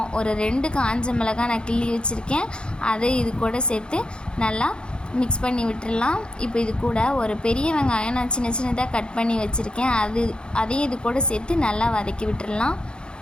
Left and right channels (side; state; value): right; late; 0.050 ms